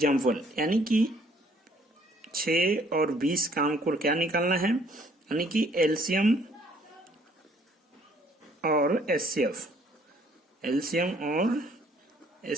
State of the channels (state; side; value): normal; both; correlation 0.62